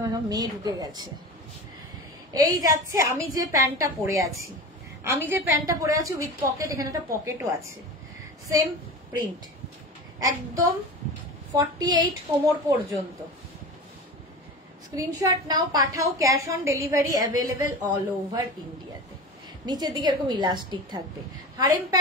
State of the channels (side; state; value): both; normal; correlation 0.30